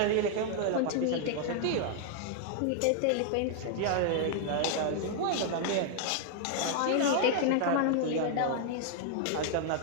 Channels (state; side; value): different; both; correlation 0.00